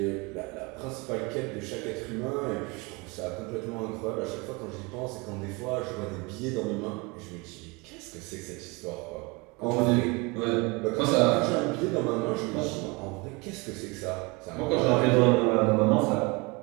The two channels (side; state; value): left; quieter; 27.3 dB